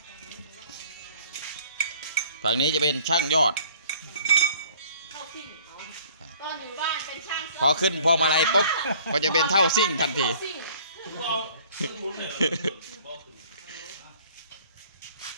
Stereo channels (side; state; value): both; inverted; correlation -0.55